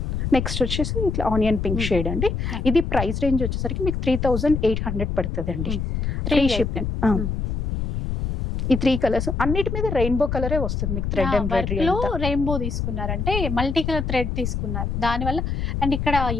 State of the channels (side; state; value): left; noise; rumble, 2 dB below the sound